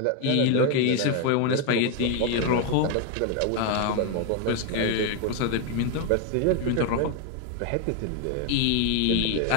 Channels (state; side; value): different; both; correlation 0.01